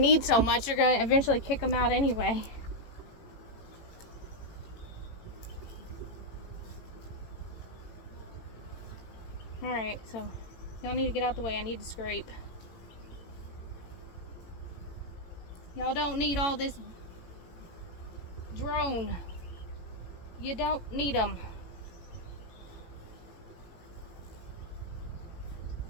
so much. They're going to eventually kick them out anyway. Alright, so y'all need to get out the way. I need to scrape. Y'all don't need all this drone. You don't need them.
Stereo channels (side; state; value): right; late; 18 ms